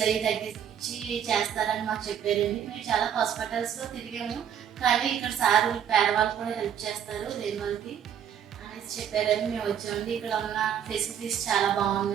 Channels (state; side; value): quieter; left; 9.1 dB